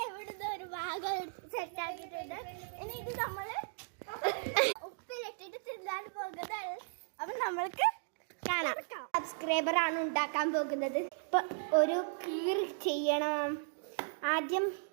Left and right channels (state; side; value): silent; left; digital silence